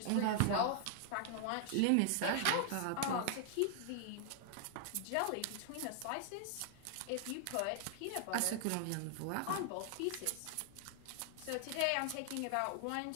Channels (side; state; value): both; different; correlation 0.00